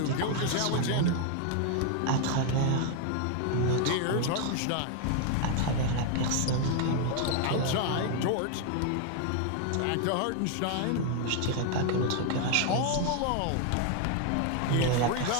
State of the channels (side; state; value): both; different; correlation 0.00